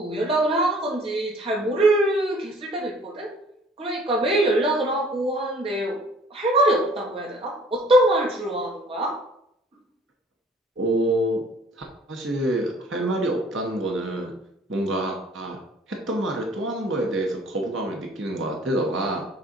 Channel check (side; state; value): both; normal; correlation 0.54